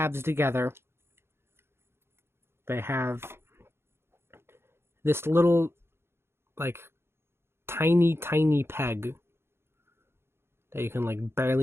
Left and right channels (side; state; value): left; late; 0.12 ms